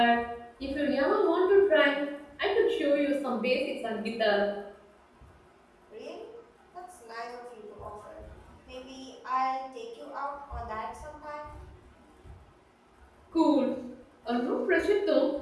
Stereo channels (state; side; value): identical; both; correlation 1.00